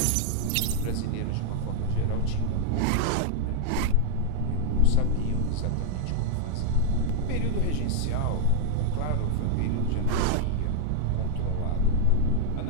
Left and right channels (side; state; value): both; different; correlation 0.00